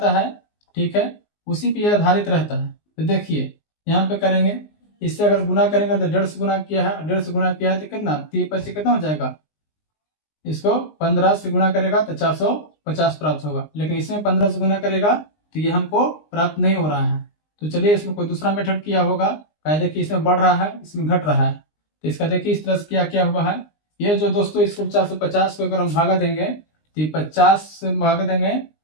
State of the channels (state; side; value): late; right; 19 ms